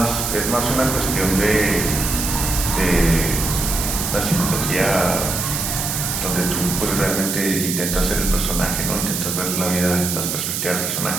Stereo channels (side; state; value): right; noise; hiss, 2 dB below the sound